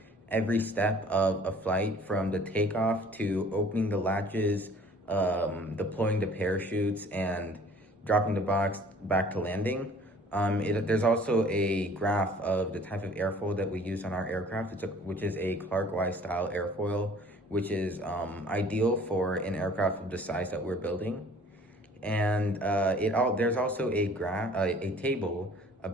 every step of a flight from the takeoff to opening the latches, deploying the parachutes, and dropping the box back to landing. There's also a graph of the type of airfoil that we use on our aircraft, which is a Clark Wise style airfoil, which is ideal for an aircraft of the size that we're building. And there's also a table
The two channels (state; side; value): normal; both; correlation 0.52